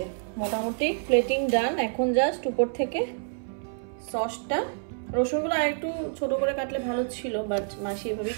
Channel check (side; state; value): left; silent; 60 dB below the other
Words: মোটামুটি প্লেটিং ডান, এখন জাস্ট উপর থেকে সসটা, রসুনগুলো আর একটু ছোট করে কাটলে ভালো ছিল, বাট মাসি এভাবেই